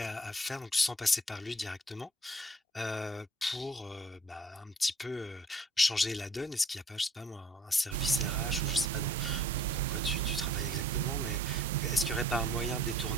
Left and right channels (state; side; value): normal; both; correlation 0.55